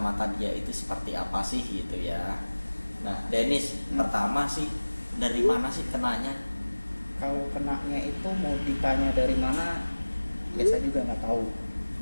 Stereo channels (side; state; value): both; inverted; correlation -1.00